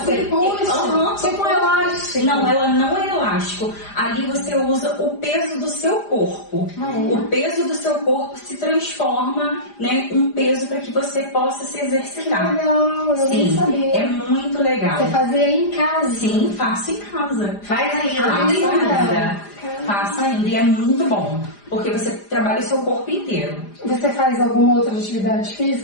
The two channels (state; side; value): late; right; 4.9 ms